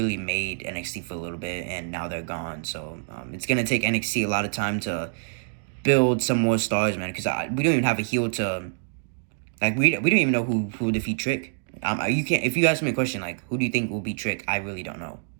made NXT for a little bit, and now they're gone. So it's going to take NXT a lot of time to build some more stars, man, because we don't even have a heel to... Like, we don't even know who will defeat Trick. You can't... If you ask me a question, like, who do you think will beat Trick, I really don't know.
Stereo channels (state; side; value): silent; left; digital silence